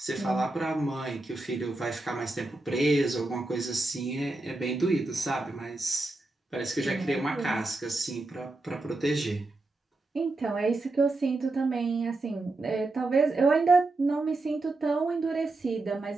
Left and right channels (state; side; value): quieter; left; 3.0 dB